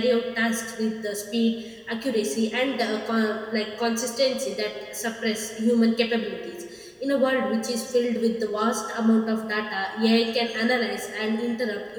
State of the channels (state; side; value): identical; both; correlation 1.00